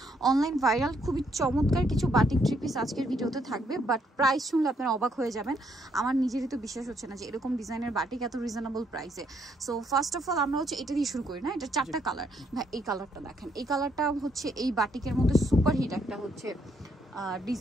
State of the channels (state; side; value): normal; both; correlation 0.72